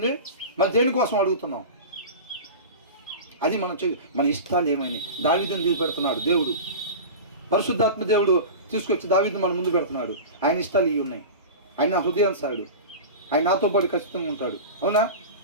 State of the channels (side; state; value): both; inverted; correlation -0.30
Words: మరి దేనికోసం అడుగుతున్నాం? అది మన ఇష్టాలు ఏమైనా. దావీదుని తీసుకుపెడుతున్నాడు దేవుడు, పరిశుద్ధాత్మ దేవుడు తీసుకొచ్చి దావీదుని మన ముందు పెడుతున్నాడు. ఆయన ఇష్టాలు ఇవి ఉన్నాయి. ఆయన నా హృదయానుసారుడు, ఆయన నాతో పాటు ఖచ్చితంగా ఉంటాడు. అవునా?